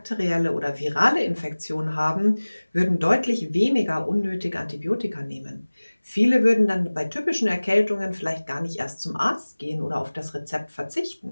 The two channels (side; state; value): both; inverted; correlation -1.00